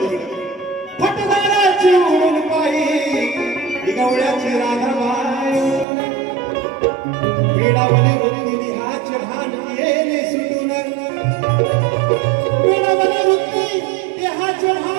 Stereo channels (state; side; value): drops out; left; at 5.9 s